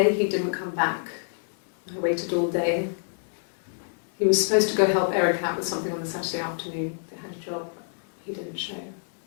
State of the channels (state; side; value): silent; right; digital silence